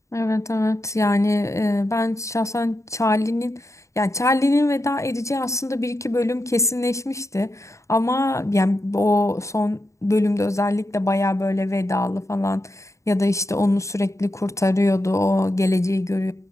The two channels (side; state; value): right; late; 0.15 ms